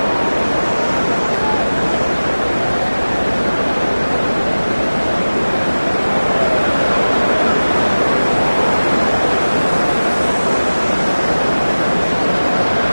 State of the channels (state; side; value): inverted; both; correlation -1.00